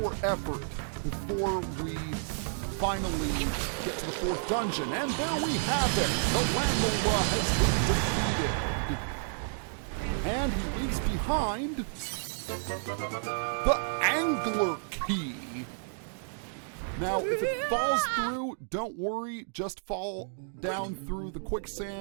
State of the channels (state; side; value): silent; left; digital silence